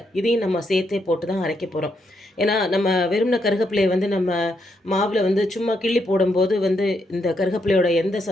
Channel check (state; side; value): normal; both; correlation 0.78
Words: இதையும் நம்ம சேர்த்தே போட்டு தான் அரைக்க போகிறோம். ஏன்னா நம்ம வெறும்ன கருகப்பிலையை நம்ம மாவில் சும்மா கிள்ளி போடும்போது இந்த கருகப்பிலையோட எந்த